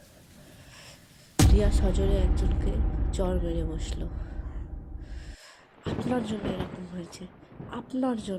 রিয়া সজোরে একজনকে চড় মেরে বসলো। আপনার জন্য এরকম হয়েছে, আপনার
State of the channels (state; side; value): identical; both; correlation 1.00